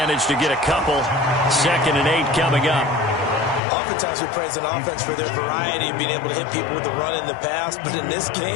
to get a couple. 2nd and 8 coming up. Oftentimes we praise an offense for their variety of being able to hit people with the run in the pass, but in this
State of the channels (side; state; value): right; drops out; at 3.6 s